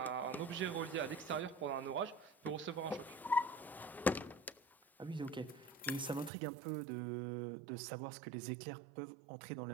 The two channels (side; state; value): left; drops out; at 6.3 s